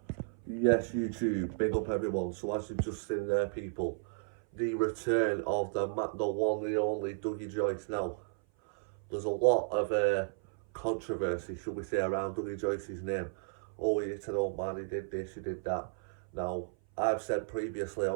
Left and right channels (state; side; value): silent; left; 55 dB below the other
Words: Yes, YouTube, big up everyone. So as you've just seen there, people, the return of the one and only Dougie Joyce now. There's a lot of controversy, should we say, around Dougie Joyce's name. Oh, he's an old man, he did this, he did that. Now, I've said previously